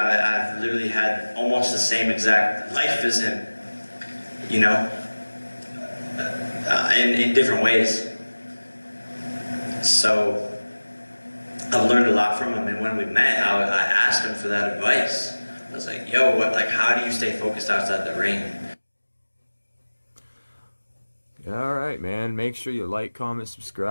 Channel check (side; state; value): both; inverted; correlation -1.00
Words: literally had almost the same exact life as him, you know, in different ways. So I've learned a lot from him, and when we met, I asked him for that advice. I was like, yo, how do you stay focused outside the ring? All right, man. Make sure you like, comment,